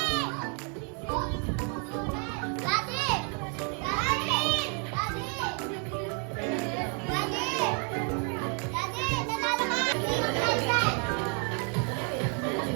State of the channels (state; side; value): quieter; left; 38.9 dB